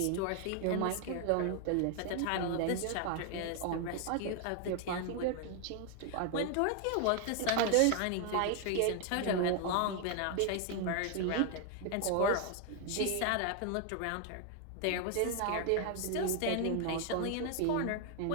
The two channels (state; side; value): different; both; correlation 0.00